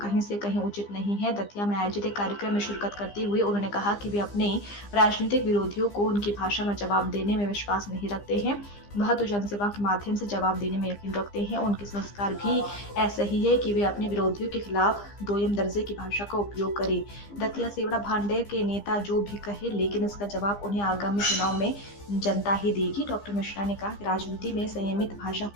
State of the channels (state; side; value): late; right; 15 ms